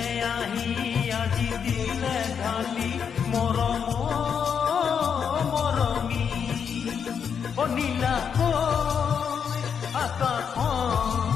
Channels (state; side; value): quieter; right; 7.1 dB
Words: আহি আজি দিলে ঢালি মৰম মৰমী ও নীলাকৈ আকাশ